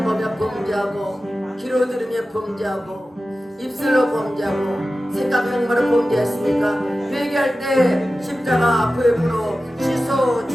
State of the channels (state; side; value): normal; both; correlation 0.94